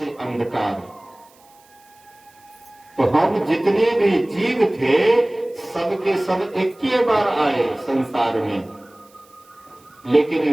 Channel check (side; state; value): right; noise; hiss, 30 dB below the sound